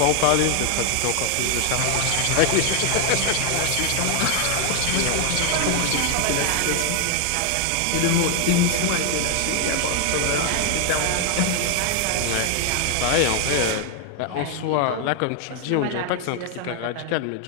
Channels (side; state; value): both; different; correlation 0.00